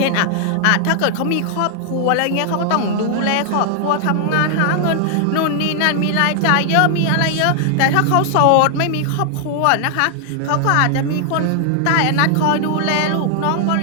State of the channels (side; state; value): both; different; correlation 0.00